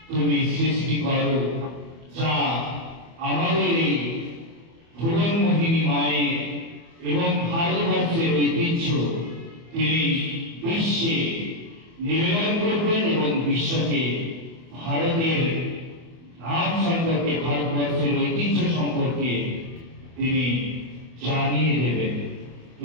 তুমি সৃষ্টি করো, যা আমাদের এই ভুবনমোহিনী মায়ের এবং ভারতবর্ষের ঐতিহ্য তিনি বিশ্বে নিবেদন করবেন এবং বিশ্বকে ভারতের নাম সম্পর্কে, ভারতবর্ষের ঐতিহ্য সম্পর্কে তিনি জানিয়ে দেবেন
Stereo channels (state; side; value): late; left; 24 ms